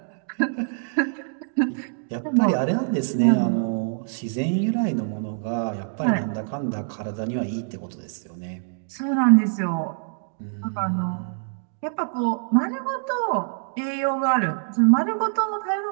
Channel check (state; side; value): silent; left; digital silence